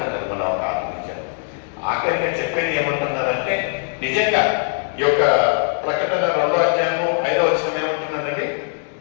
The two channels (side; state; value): right; silent; 65 dB below the other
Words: మన ఒక ఆత్మీయం. ఆఖరిగా చెప్పేది ఏమంటున్నారంటే నిజంగా ఈ యొక్క ప్రకటన 2వ అధ్యాయము 5వ వచనం ఏమంటున్నదండి?